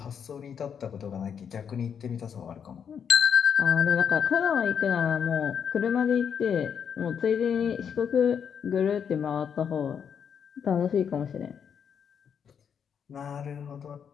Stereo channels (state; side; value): quieter; right; 7.5 dB